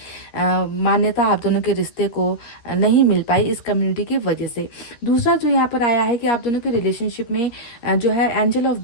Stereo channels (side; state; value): right; late; 13 ms